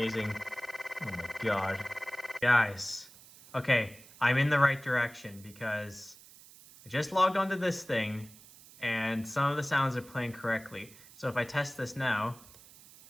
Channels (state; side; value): noise; right; hiss, 21 dB below the sound